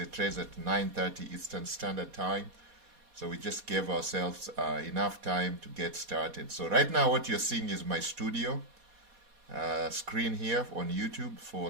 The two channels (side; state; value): left; late; 4.2 ms